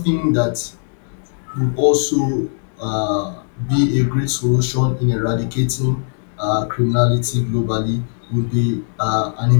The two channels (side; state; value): right; silent; 65 dB below the other